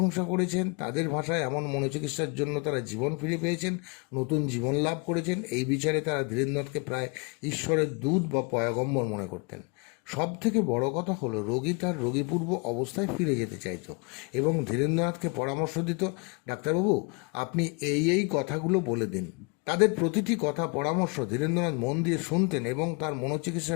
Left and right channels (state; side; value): quieter; right; 32.1 dB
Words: করেছেন। তাদের ভাষায় এমন মনোচিকিৎসার জন্য তারা জীবন ফিরে পেয়েছেন, নতুন জীবন লাভ করেছেন। এই বিচারে তারা ধীরেন্দ্রনাথকে প্রায় ঈশ্বরের দূত বা পয়গম্বর মনে করতেন। সব থেকে বড় কথা হলো রোগী তার রোগীপূর্ব অবস্থায় ফিরে যেতে চাইত এবং ধীরেন্দ্রনাথকে পরামর্শ দিত, ডাক্তারবাবু আপনি এই কথাগুলো বলে দিন। তাদের প্রতিটি কথা পরামর্শ ধীরেন্দ্রনাথ মন দিয়ে শুনতেন এবং তার